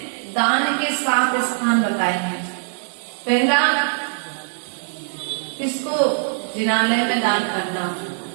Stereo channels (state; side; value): silent; left; digital silence